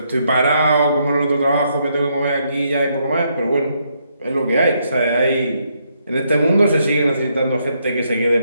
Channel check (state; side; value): inverted; both; correlation -0.76